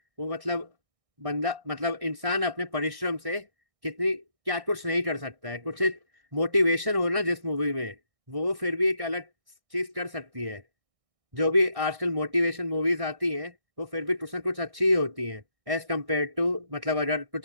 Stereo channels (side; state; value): left; late; 1.6 ms